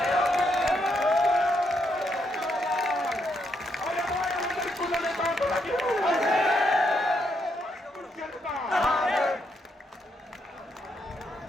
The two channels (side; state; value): both; normal; correlation 0.77